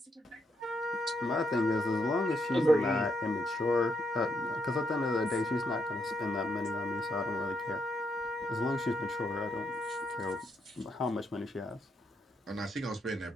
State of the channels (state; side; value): normal; both; correlation 0.77